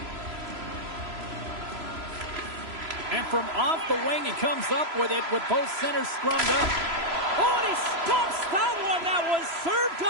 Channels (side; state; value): left; late; 3.0 ms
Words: And from off the wing, he comes up with it with both centers scrummed up. Oh, and he stops that one. That was served